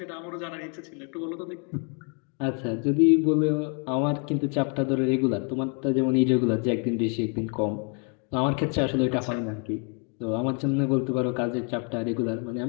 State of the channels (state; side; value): quieter; right; 38.2 dB